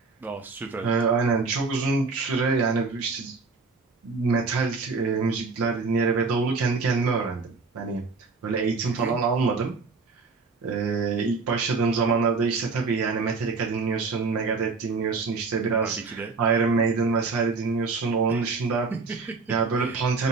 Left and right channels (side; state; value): left; quieter; 4.3 dB